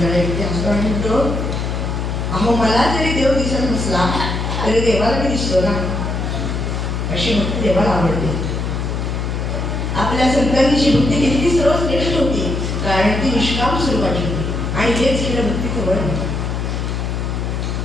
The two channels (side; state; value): left; noise; hum, 2 dB below the sound